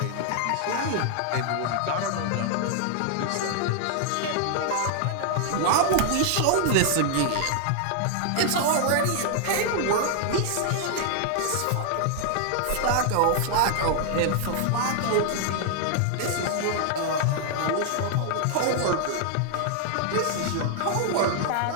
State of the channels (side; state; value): both; different; correlation 0.00